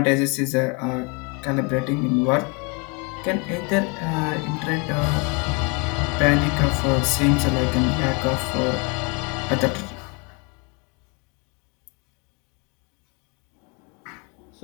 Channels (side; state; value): right; quieter; 32.1 dB